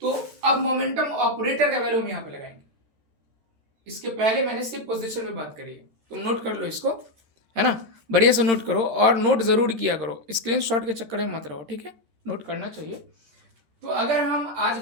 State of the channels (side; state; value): left; late; 13 ms